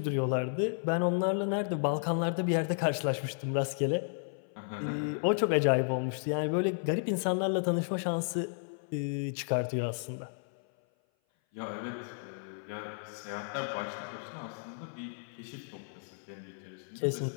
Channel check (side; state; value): right; silent; 56 dB below the other